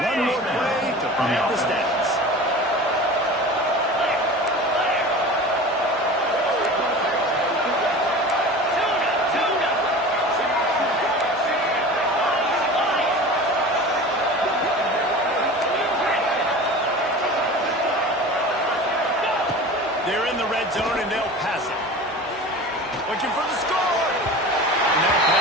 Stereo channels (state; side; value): normal; both; correlation 0.36